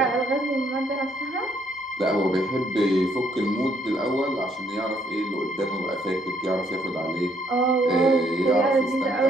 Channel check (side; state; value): both; normal; correlation 0.69